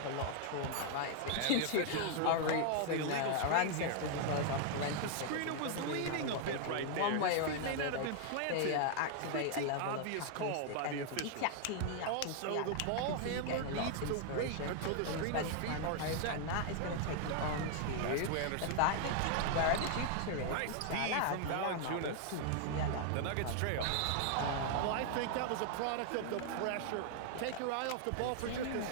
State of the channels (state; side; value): different; both; correlation 0.00